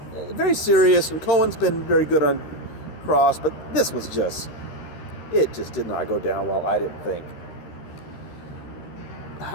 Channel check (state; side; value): late; right; 13 ms